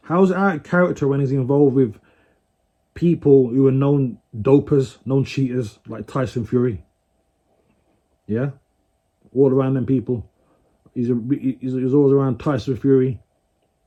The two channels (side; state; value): both; identical; correlation 1.00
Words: How is it out of character when he's involved with people who are known dopers, known cheaters, like Tyson Fury? Yeah, all around them people. He's always around Tyson Fury,